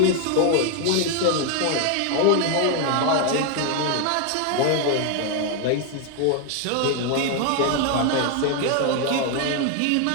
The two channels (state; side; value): different; both; correlation 0.01